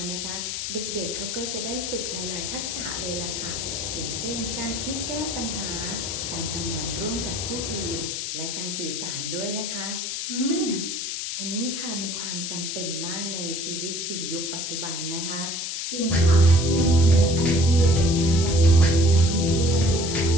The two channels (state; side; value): noise; left; hiss, 4 dB below the sound